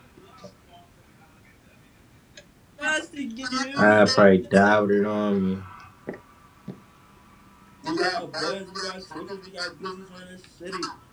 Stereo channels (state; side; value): identical; both; correlation 1.00